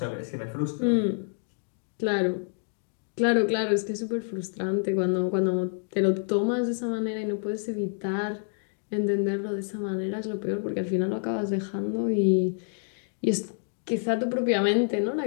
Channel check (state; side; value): silent; right; 60 dB below the other